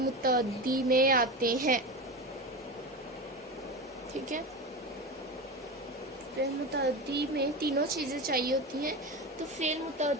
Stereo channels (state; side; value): normal; both; correlation 0.23